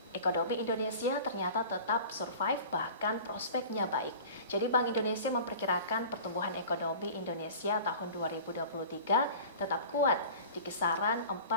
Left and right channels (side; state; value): both; inverted; correlation -0.40